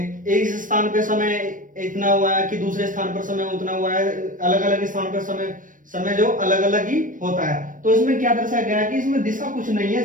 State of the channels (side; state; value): left; late; 0.38 ms